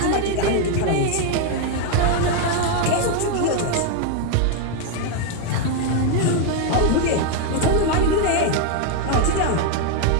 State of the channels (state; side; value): different; both; correlation 0.01